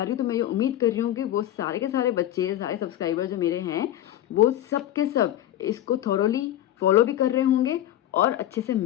रही हूँ, तो मैं ये उम्मीद कर रही हूँ कि वो सारे के सारे बच्चे, सारे सब्सक्राइबर जो मेरे हैं, वो सब के सब इसको थॉरोली फॉलो भी कर रहे होंगे और अच्छे से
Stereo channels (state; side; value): quieter; right; 12.5 dB